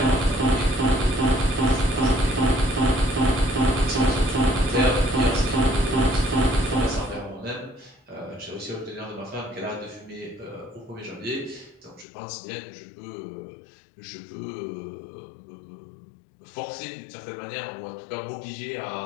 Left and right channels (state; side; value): drops out; right; at 12.1 s